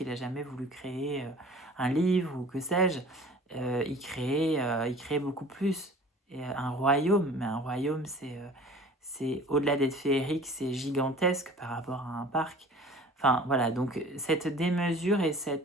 il a jamais voulu créer un livre ou que sais-je. Il créait beaucoup plus. Et un royaume, mais un royaume, c'est au-delà d'être féerique, c'est gigantesque par rapport à un parc. Enfin, voilà, donc cette démesure et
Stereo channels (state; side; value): normal; both; correlation 0.45